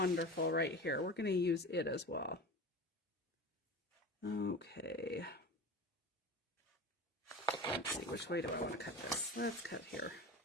right here. We're going to use it as well. Okay. Let's see, which way do I want to cut this? Let's cut here.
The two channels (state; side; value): normal; both; correlation 0.31